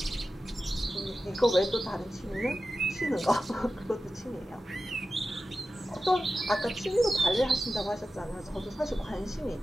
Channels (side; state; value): both; normal; correlation 0.93